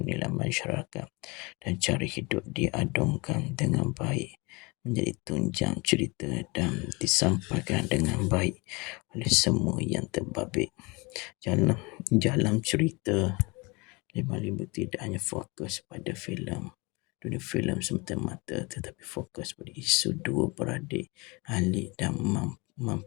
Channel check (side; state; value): right; quieter; 26.8 dB